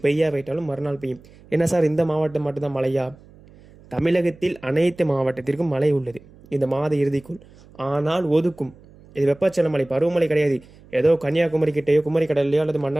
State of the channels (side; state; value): right; noise; hum, 24 dB below the sound